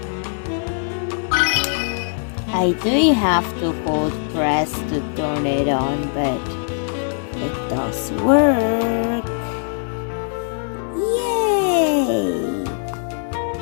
I do have to hold press to turn it on, but it does work. Yay!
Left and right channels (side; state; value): right; silent; digital silence